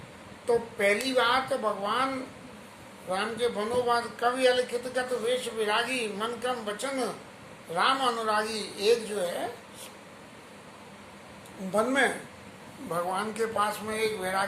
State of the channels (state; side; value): identical; both; correlation 1.00